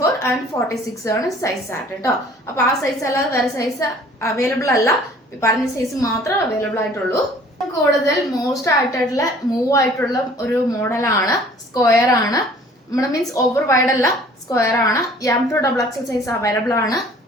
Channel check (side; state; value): both; normal; correlation 0.52